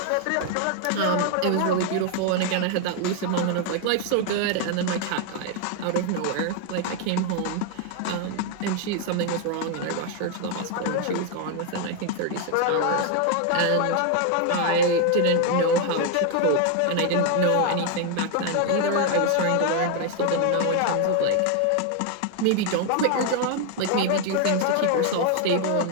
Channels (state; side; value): different; both; correlation 0.01